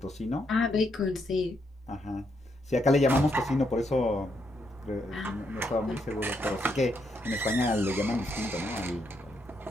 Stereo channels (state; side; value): normal; both; correlation 0.77